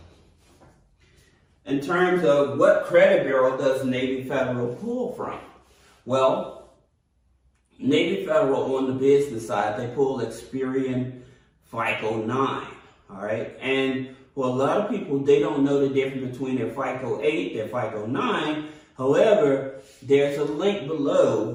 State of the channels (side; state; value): both; identical; correlation 1.00